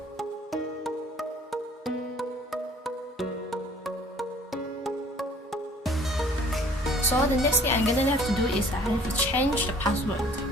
So the next thing I'm gonna have to do is I have to change the password.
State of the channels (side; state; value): both; normal; correlation 0.54